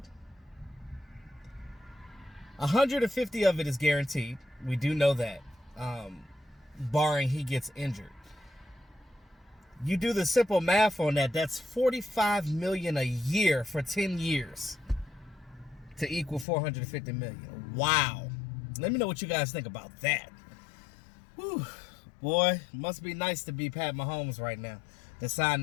150 of it is guaranteed. We do know that, barring he gets injured. You do the simple math on that, that's $45 million a year for 10 years to equal $450 million. Wow. Let me know what you guys think about that. Whew. Boy, must be nice to be Pat Mahomes right now to sign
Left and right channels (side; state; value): right; drops out; at 16.4 s